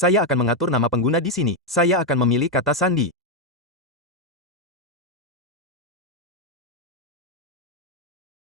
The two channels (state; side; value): normal; both; correlation 0.03